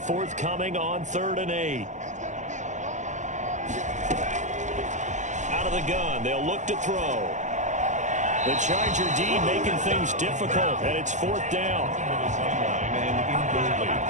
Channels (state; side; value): late; left; 0.35 ms